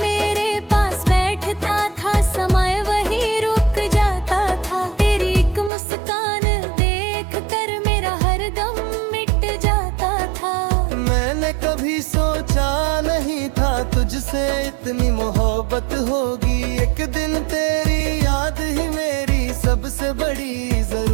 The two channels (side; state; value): left; drops out; at 5.7 s